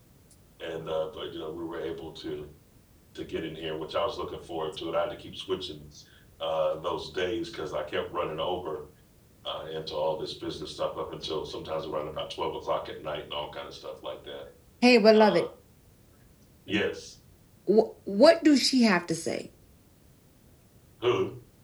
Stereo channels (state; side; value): identical; both; correlation 1.00